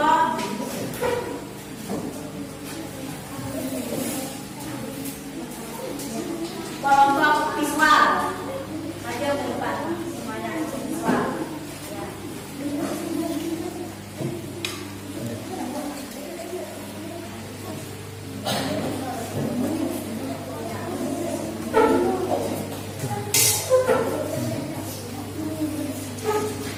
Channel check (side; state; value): both; identical; correlation 1.00